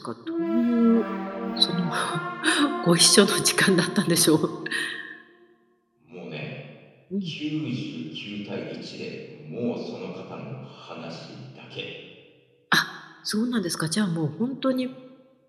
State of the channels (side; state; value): both; identical; correlation 1.00